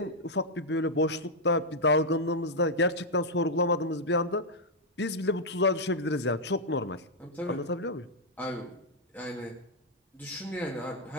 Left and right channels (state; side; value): normal; both; correlation -0.03